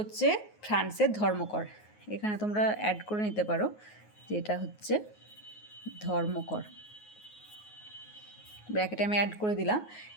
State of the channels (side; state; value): right; late; 9.5 ms